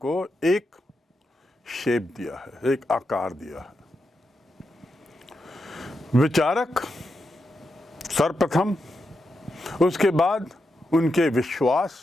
एक शेप दिया है, एक आकार दिया है। विचारक सर्वप्रथम, उसके बाद उनके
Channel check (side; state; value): both; normal; correlation 0.86